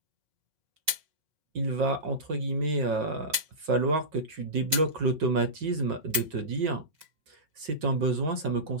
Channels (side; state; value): left; late; 4.9 ms